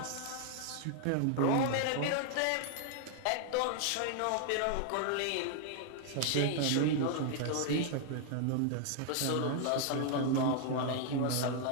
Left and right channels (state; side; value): different; both; correlation 0.00